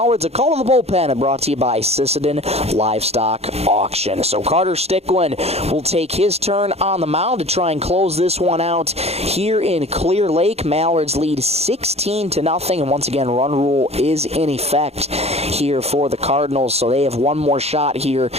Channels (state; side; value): late; left; 0.30 ms